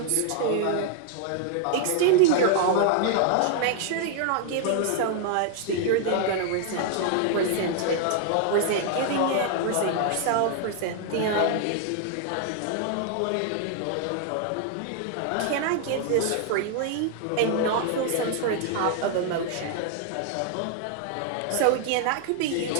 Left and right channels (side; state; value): both; different; correlation 0.00